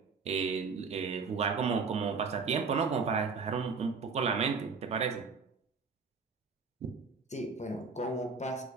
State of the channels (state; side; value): quieter; left; 4.9 dB